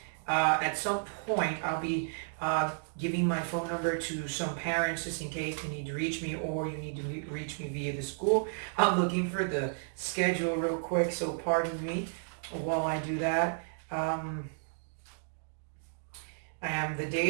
at some point, I'll be giving my phone number to some parents just in case you need to reach me or you need to reach me via the school. I'm looking for the schedule real quick, so pardon me while I do that. The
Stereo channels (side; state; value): left; silent; digital silence